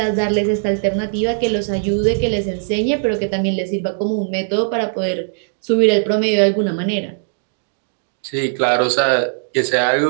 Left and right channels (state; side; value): silent; left; digital silence